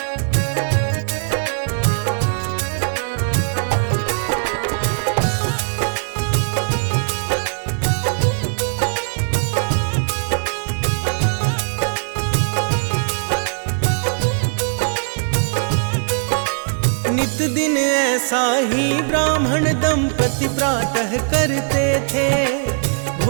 नित दिन ऐसा ही ब्राह्मण दंपति प्रातः करते थे,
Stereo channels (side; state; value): left; silent; digital silence